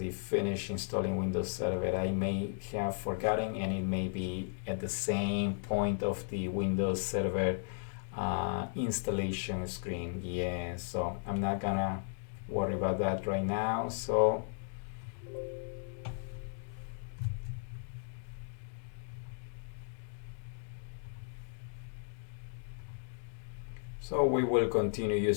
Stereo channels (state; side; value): silent; right; digital silence